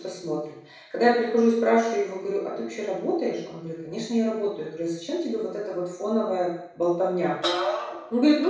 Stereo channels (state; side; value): identical; both; correlation 1.00